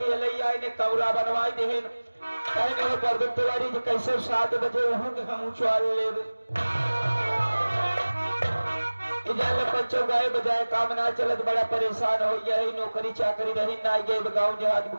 लैया ने कौरा बनवाई देहन कहने हो पर तिवारी जी कैसे 7 बजे वहां के हम उछाल लेब। इधर बच्चों गाय बजाय काम ना चलत बड़ा परेशान हो यही नौकरी चाकरी रही ना गए गाँव देहात में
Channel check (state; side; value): inverted; both; correlation -1.00